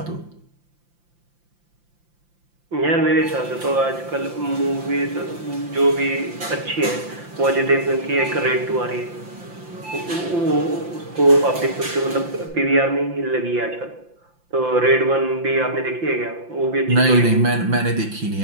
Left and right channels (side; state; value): left; late; 5.8 ms